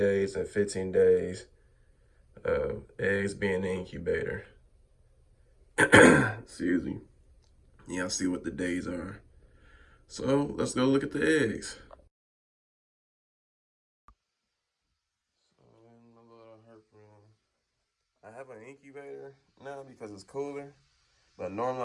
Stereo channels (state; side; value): identical; both; correlation 1.00